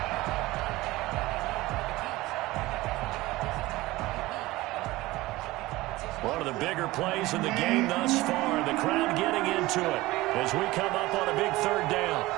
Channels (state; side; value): quieter; left; 19.1 dB